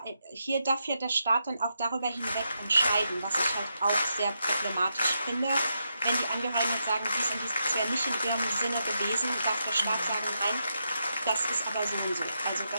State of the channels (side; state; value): both; inverted; correlation -0.83